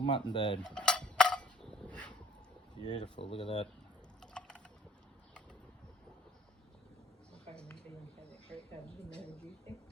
bird. Beautiful, look at that.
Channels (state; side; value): normal; both; correlation 0.55